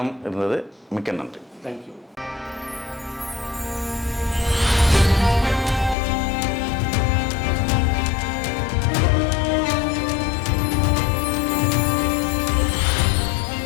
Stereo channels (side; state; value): right; drops out; at 6.0 s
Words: இருந்தது. மிக்க நன்றி. தேங்க்யூ.